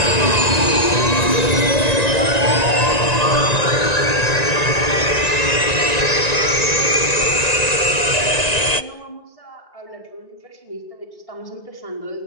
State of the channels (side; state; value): right; late; 1.9 ms